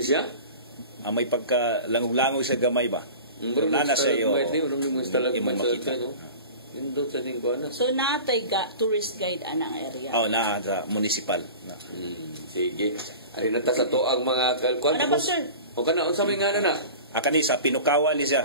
siya may pagka langog siya gamay ba nana siya yo imo makita nindot sa ding kuan. So naatay tourist guide anang area. Na sa municipal. Sige. Ay nata sa to ang mga kuan. Ano ba sir? O kana unsa may ngano na? Kani sa Pinukawan ni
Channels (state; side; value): inverted; both; correlation -0.37